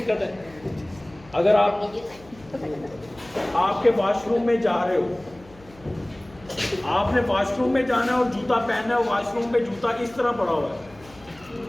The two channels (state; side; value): noise; left; hum, 24 dB below the sound